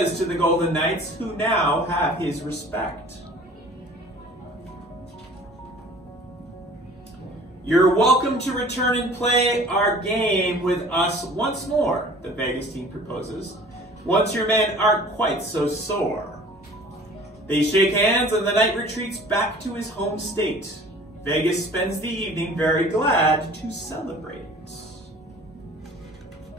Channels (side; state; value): both; normal; correlation 0.47